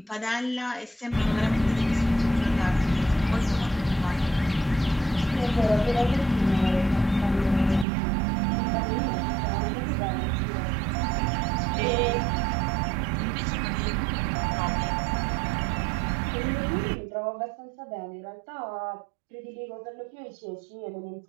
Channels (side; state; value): left; drops out; at 7.9 s